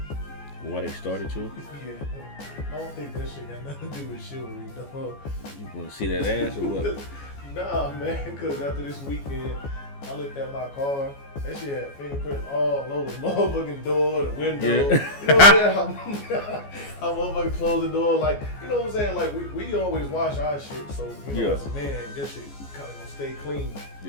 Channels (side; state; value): right; late; 14 ms